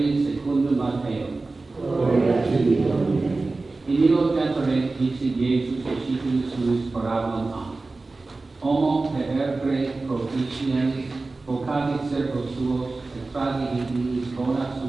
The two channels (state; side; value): quieter; left; 3.5 dB